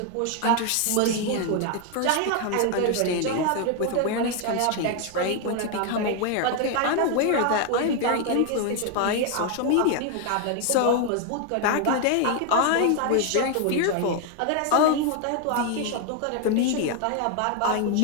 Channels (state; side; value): different; both; correlation 0.01